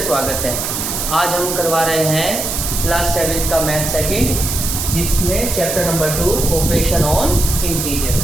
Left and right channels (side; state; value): right; noise; hiss, 3 dB below the sound